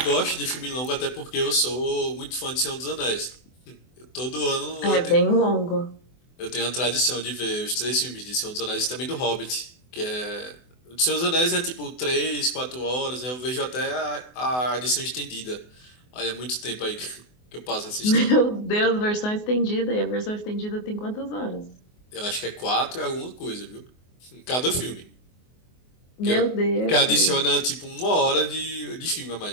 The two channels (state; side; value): late; right; 24 ms